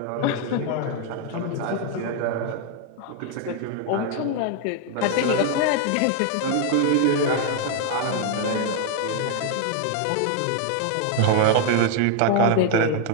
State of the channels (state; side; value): different; both; correlation 0.00